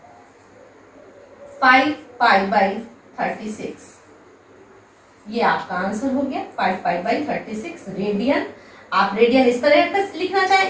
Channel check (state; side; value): identical; both; correlation 1.00